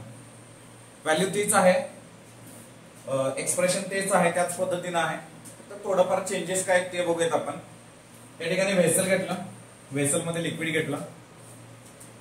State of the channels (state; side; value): identical; both; correlation 1.00